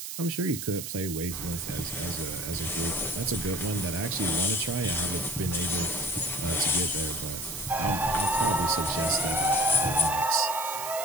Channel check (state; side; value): noise; right; hiss, 7 dB below the sound